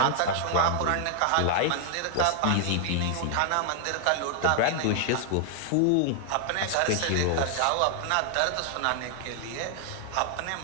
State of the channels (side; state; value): both; different; correlation 0.00